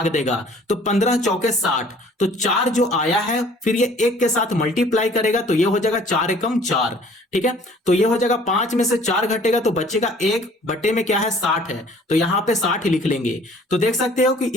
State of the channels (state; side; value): normal; both; correlation 0.53